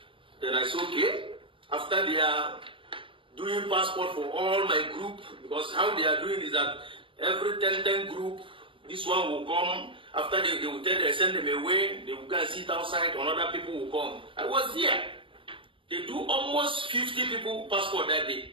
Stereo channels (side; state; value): left; late; 0.25 ms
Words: Then I said, okay. After they are doing passport for all my group, because how they are doing is that every 10 group, this one will come. After they will tell they send them away, they will go and sit outside, another people will come. I was there. They do almost 50 people passport that day.